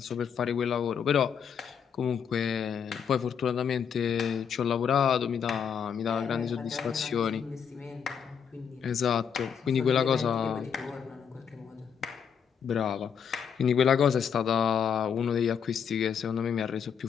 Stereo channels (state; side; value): quieter; right; 7.4 dB